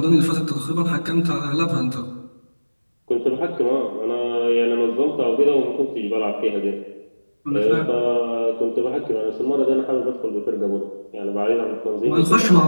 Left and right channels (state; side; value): inverted; both; correlation -1.00